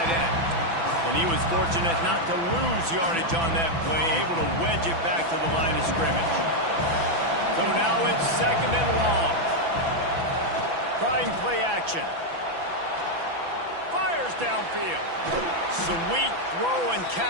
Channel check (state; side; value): late; left; 6.0 ms